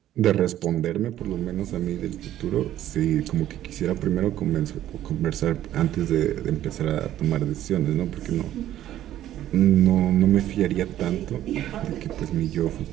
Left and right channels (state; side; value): quieter; left; 12.6 dB